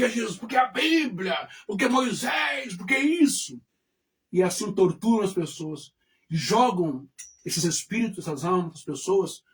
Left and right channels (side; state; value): both; identical; correlation 1.00